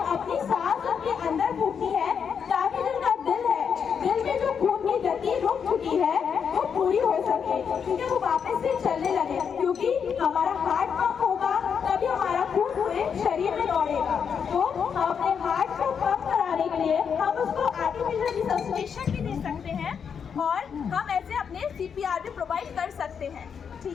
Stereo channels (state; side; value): quieter; right; 6.9 dB